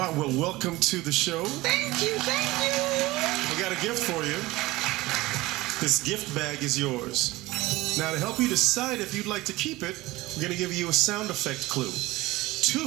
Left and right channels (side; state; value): left; quieter; 19.4 dB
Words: well, welcome to the show. Thank you. We got a gift for you. This gift bag is yours. Now, to help you decide if you'd like to keep it, we're going to give you a sound effect clue.